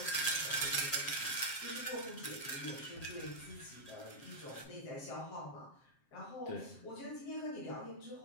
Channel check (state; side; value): late; right; 7.5 ms